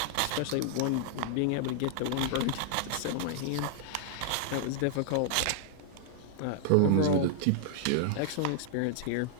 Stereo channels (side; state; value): both; different; correlation -0.01